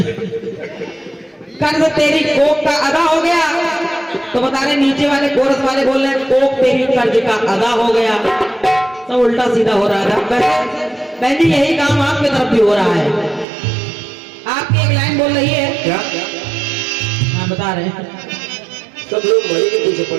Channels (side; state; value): left; drops out; at 13.5 s